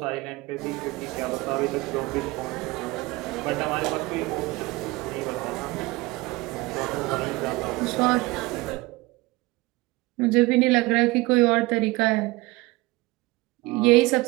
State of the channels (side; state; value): left; quieter; 21.9 dB